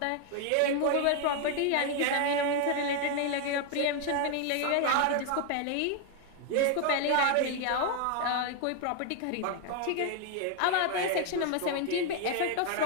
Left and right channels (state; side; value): different; both; correlation 0.00